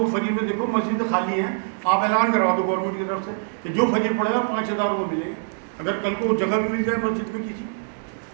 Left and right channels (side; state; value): left; silent; digital silence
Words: فجر میں دیکھو مسجد خالی ہیں، آپ اعلان کروا دو گورنمنٹ کی طرف سے کہ جو فجر پڑے گا 5000 روپے ملیں گے. اگر کل کو جگہ بھی مل جائے مسجد میں کسی